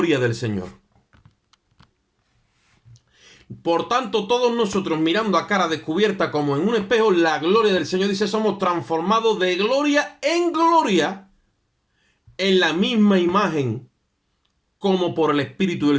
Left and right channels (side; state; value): both; identical; correlation 1.00